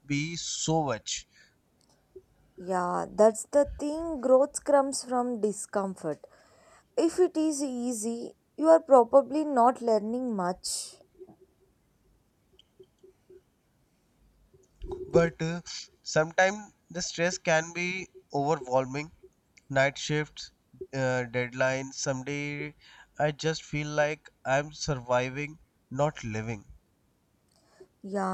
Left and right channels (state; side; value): identical; both; correlation 1.00